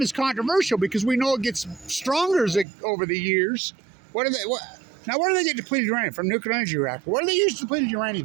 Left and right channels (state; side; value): drops out; left; at 2.7 s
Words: is controversial because we know it gets stronger over the years. Now, where do they get depleted uranium? From nuclear energy reactor. What do they use depleted